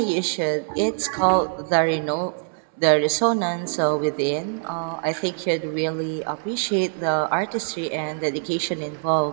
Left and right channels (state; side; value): silent; left; digital silence